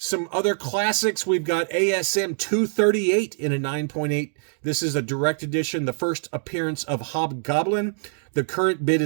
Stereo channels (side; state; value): left; silent; digital silence